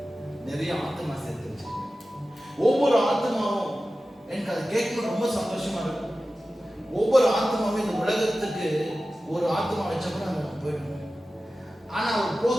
நிறைய ஆத்துமா சேர்த்து வச்சுக்க. ஒவ்வொரு ஆத்மாவும் எனக்கு அது கேட்கணும் ரொம்ப சந்தோஷமா இருக்கும். ஒவ்வொரு ஆத்மாவும் இந்த உலகத்துக்கு ஒரு ஆத்மா வச்ச கூட அங்க போயிடும். ஆனா அவர்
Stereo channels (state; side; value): normal; both; correlation 0.95